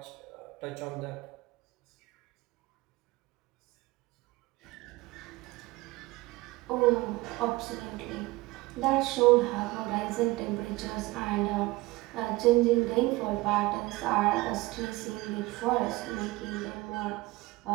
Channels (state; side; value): quieter; left; 20.8 dB